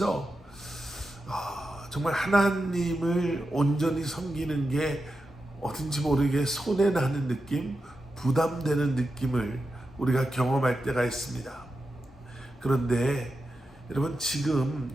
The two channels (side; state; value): both; normal; correlation 0.89